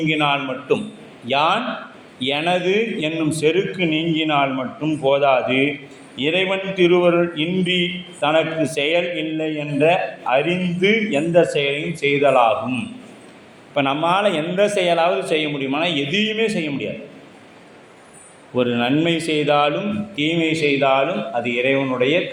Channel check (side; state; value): both; identical; correlation 1.00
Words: மட்டும், யான் எனது என்னும் செருக்கு நீங்கினால் மட்டும் போதாது, இறைவன் திருவருள் இன்றி தனக்கு செயல் இல்லை என்ற அறிந்து எந்த செயலையும் செய்தலாகும். இப்போ நம்மால் எந்த செயலாவது செய்ய முடியுமானா எதையுமே செய்ய முடியாது. ஒரு நன்மை செய்தாலும் தீமை செய்தாலும் அது இறைவனுடைய